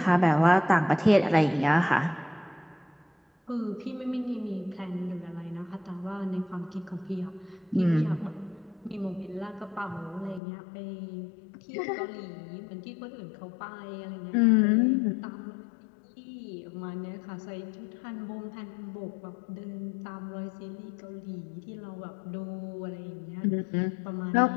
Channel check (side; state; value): right; drops out; at 10.4 s